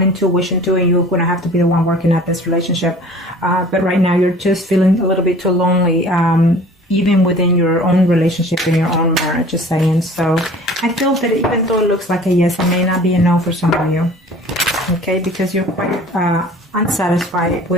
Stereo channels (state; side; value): normal; both; correlation 0.47